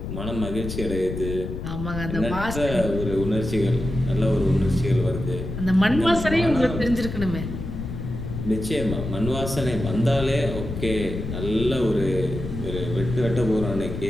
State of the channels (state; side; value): noise; left; rumble, 6 dB below the sound